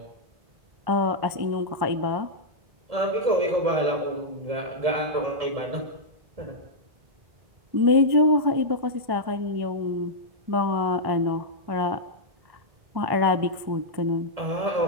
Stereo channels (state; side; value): late; left; 1.1 ms